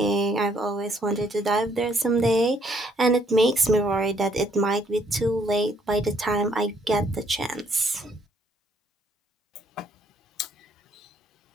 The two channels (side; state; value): both; normal; correlation 0.68